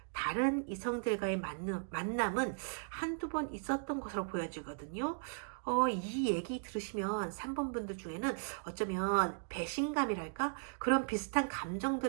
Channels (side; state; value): left; silent; digital silence